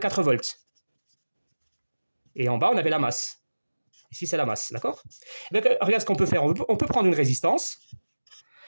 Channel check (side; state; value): both; inverted; correlation -1.00